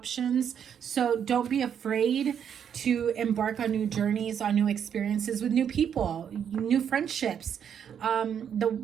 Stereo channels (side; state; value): left; quieter; 8.3 dB